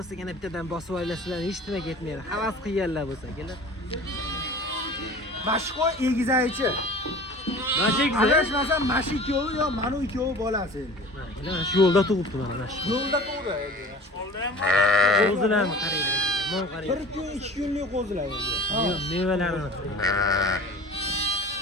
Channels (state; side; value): normal; both; correlation 0.41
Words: yana bittadan bosib olasizlar, hech nima ketmaydi. Havas qilganlar bo'lsa, kelar. Mashqo egizaychi. Mashq Adashmasam mashq ikkovi yo mana ikkovi bolasi endi. mana shu yo'lda turibdi mana shu. Yo'lda tug'di endi. Qo'zilarni qaranglar. Mana qarang. 1 kun, 2 kunlik qo'zilar endi. Mevalarini